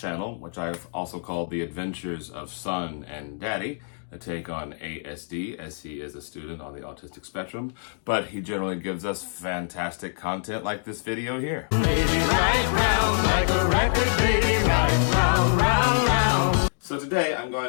which I've also called The Adventures of Son and Daddy, a take on ASD, as he is a student on the autistic spectrum, but he generally gives us fantastic content like this video here. Baby, right round, like a record, baby, right round, round, round. So today I'm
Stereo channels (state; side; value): silent; right; digital silence